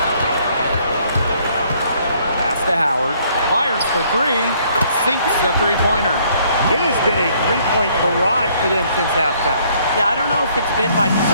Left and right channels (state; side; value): inverted; both; correlation -0.64